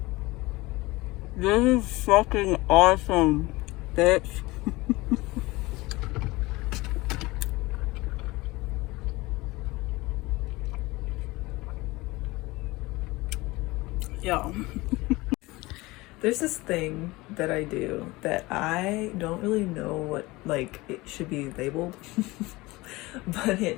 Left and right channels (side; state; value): right; quieter; 21.4 dB